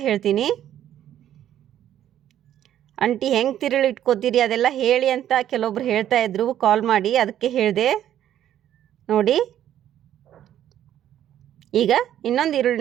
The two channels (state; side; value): quieter; left; 11.3 dB